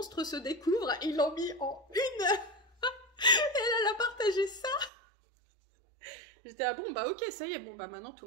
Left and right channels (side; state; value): left; drops out; at 4.9 s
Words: se découvre, et ils l'ont mis en une. Et elle a partagé ça. J'étais, ah bon, ok, ça y est, maintenant tout